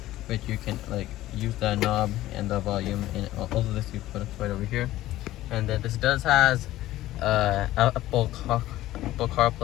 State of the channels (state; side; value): quieter; right; 15.4 dB